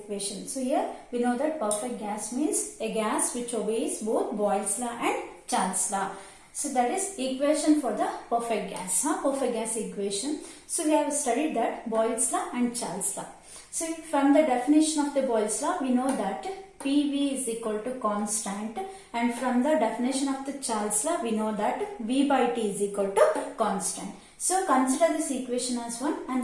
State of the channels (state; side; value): identical; both; correlation 1.00